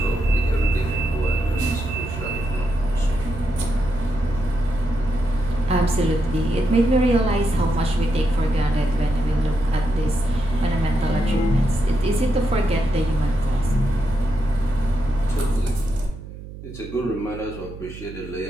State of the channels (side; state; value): right; noise; hum, 14 dB below the sound